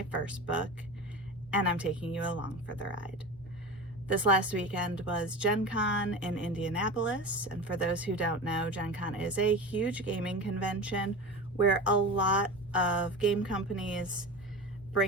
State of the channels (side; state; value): both; normal; correlation 0.30